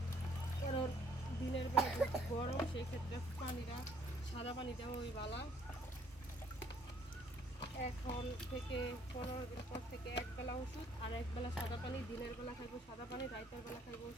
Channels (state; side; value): normal; both; correlation 0.62